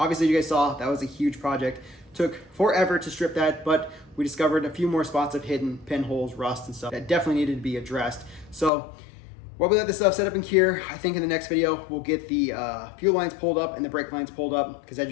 you guys saw, that was a huge project. Took forever to strip that, but we discovered a few more spots of hidden pinholes, rust and stuff that definitely needed to be addressed. So while we let this stuff set up and cure, I think in the next video, we'll get the fuel lines pulled up and the brake lines pulled up, because as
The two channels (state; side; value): drops out; right; at 8.7 s